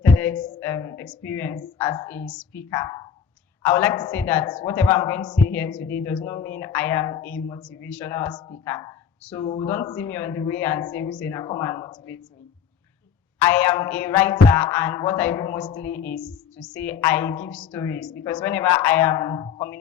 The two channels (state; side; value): quieter; right; 7.7 dB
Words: TEDx experience as a speaker, I would like to say that whatever I'm going to say here today does not mean I am a motivational speaker. So don't see me on the way and say, Husseina, come and motivate me. I am a writer, and what I do mostly is to say I give stories, because whenever I am